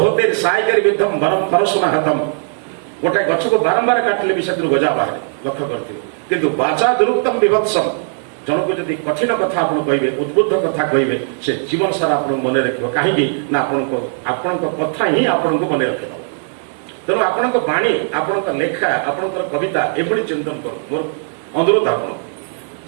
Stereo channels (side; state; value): left; silent; digital silence